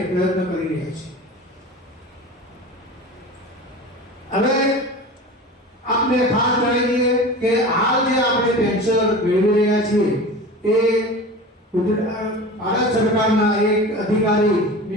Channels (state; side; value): normal; both; correlation 0.34